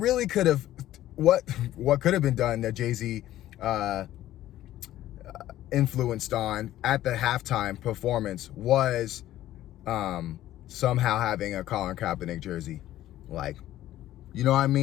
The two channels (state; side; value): quieter; right; 13.8 dB